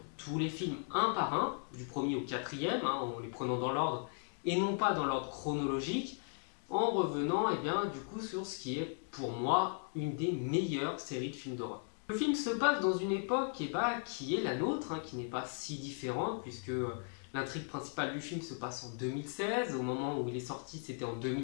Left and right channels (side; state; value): right; silent; 53 dB below the other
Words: tous les films un par un, du premier au quatrième, en les prenant dans l'ordre et non pas dans l'ordre chronologique, en revenant du coup sur ce qui est pour moi une des meilleures séries de films d'horreur. Le film se passe dans une époque qui est la nôtre, qui n'est pas si différente puisque l'intrigue principale du film se passe en 2016, au moment où il est sorti c'était en